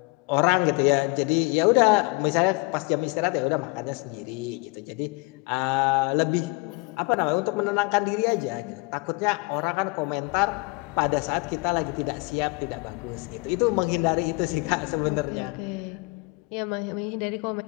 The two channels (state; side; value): quieter; right; 27.5 dB